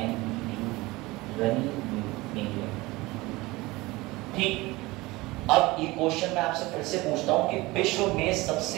रनी मीड। ठीक, अब ये क्वेश्चन मैं आपसे फिर से पूछता हूं कि विश्व में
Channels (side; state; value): left; quieter; 21.2 dB